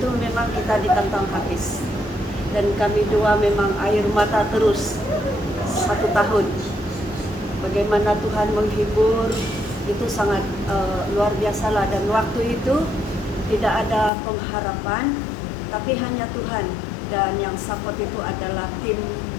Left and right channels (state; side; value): drops out; right; at 14.1 s